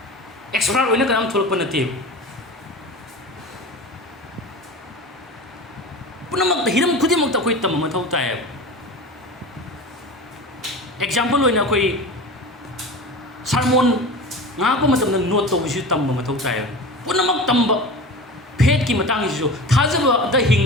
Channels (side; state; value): both; normal; correlation 0.32